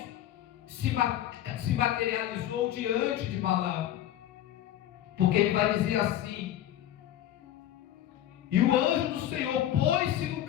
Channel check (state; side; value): quieter; right; 12.1 dB